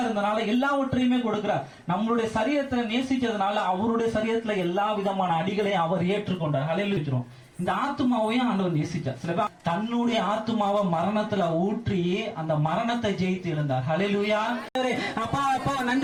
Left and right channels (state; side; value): identical; both; correlation 1.00